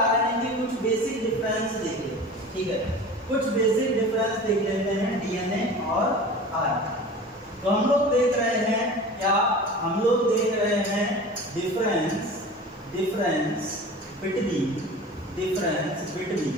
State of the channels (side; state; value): both; normal; correlation 0.37